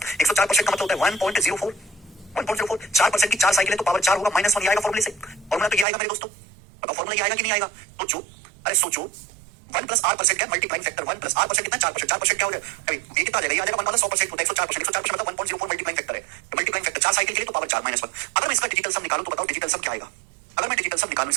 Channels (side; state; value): left; drops out; at 5.9 s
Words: 104% का मतलब होता है 1.04, 1.04। 4% की 4 साइकिल है तो पावर 4 होगा, -1 आएगा फॉर्मूले से। फॉर्मूला तो ये आएगा मेरे दोस्तों, बताओ फॉर्मूला ये आएगा कि नहीं आएगा? सोचो, अरे सोचो, 1+r% क्या मल्टीप्लाइंग फैक्टर 1+r% कितना 4%, 4% क्या हो जाएगा अभी ये कितना आ जाएगा, ये आ जाएगा 1 100% होता है 104%, 104% मतलब 1.04 मल्टीप्लाइंग फैक्टर है, मल्टीप्लाइंग फैक्टर 4 साइकिल के लिए तो पावर 4 -1। अगर मैं इसका डिजिटल सम निकालूं तो बताओ डिजिटल सम क्या आएगा, अगर मैं डिजिटल सम निकालूं